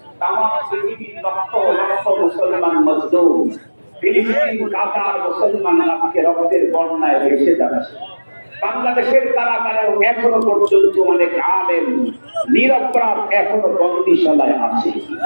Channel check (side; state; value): both; inverted; correlation -1.00